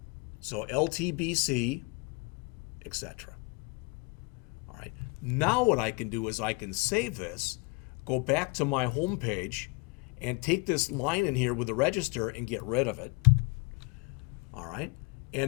So LTBC, etc. All right. Now what I can do is I can save this, go back to my home page, and take this line in here with the register and get rid of it. All right.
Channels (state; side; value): quieter; right; 27.8 dB